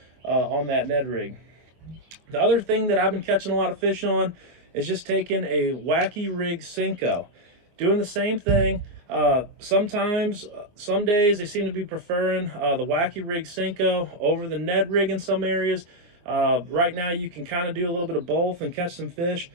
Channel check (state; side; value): late; left; 24 ms